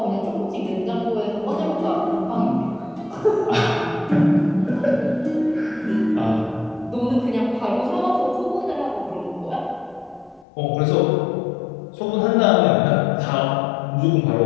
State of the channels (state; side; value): drops out; right; at 10.5 s